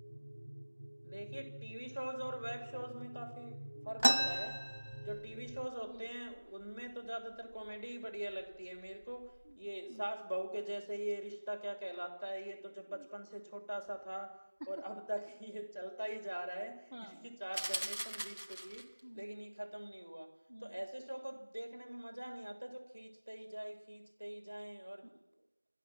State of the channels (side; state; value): both; inverted; correlation -1.00